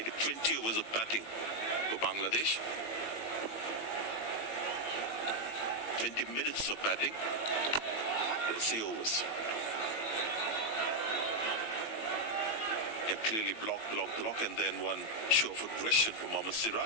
20 overs of batting for Bangladesh. 20 minutes of batting. Let's say overs. Clearly block, and then one show of aggression from Mohammad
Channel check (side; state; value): right; late; 18 ms